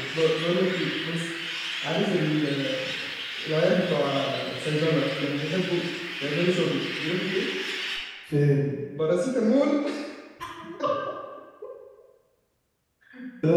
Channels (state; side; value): identical; both; correlation 1.00